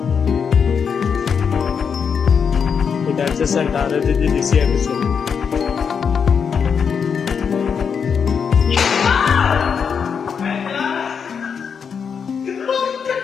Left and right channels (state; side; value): quieter; right; 6.6 dB